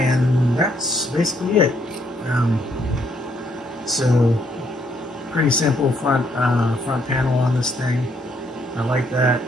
that's basically it. So pretty simple front panel on this thing. I like that.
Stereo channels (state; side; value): normal; both; correlation 0.71